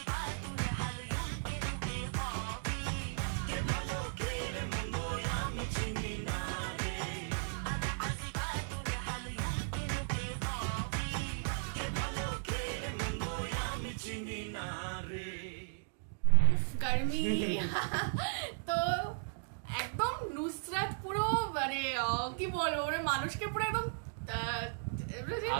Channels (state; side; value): silent; left; digital silence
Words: চিনি না রে গার্মি। তো একদম নুসরাত পুরো মানে কি বলবো মানে মানুষকে পুরো একদম